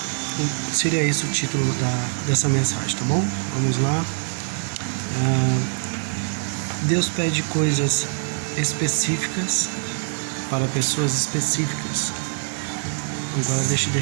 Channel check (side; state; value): left; silent; digital silence